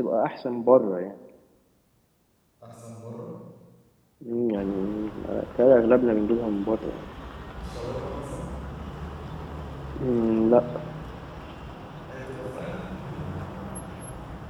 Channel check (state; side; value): identical; both; correlation 1.00